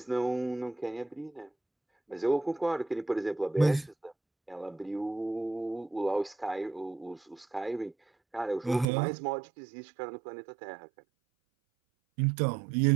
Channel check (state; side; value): drops out; left; at 8.8 s